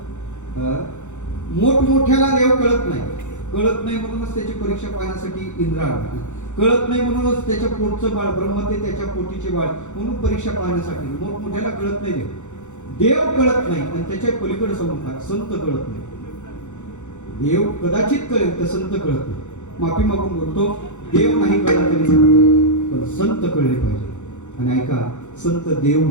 मोठमोठ्याला देव कळत नाही. कळत नाही म्हणूनच त्याची परीक्षा पाहण्यासाठी इंद्र आला. कळत नाही म्हणूनच त्याच्या पोटचं बाळ ब्रह्म ते त्याच्या पोटीचे बाळ म्हणून परीक्षा पाहण्यासाठी. मोठमोठ्याला कळत नाही देव. देव कळत नाही आणि त्याच्या पलीकडे संत कळत नाही. देव कदाचित कळेल तर संत कळत नाही. माफी मागून बोलतो, देव नाही कळला तरी पण संत कळले पाहिजे. आणि ऐका, संत देव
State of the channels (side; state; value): right; late; 0.84 ms